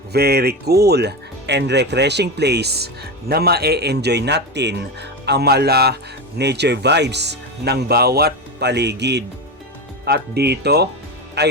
very cool and refreshing place na ma-enjoy natin ang mala nature vibes ng bawat paligid. At dito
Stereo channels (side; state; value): both; normal; correlation 0.19